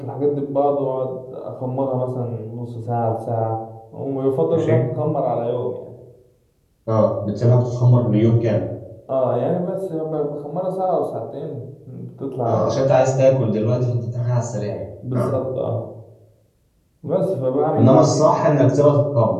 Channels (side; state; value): both; identical; correlation 1.00